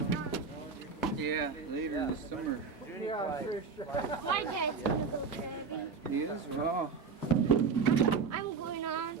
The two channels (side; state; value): left; quieter; 5.3 dB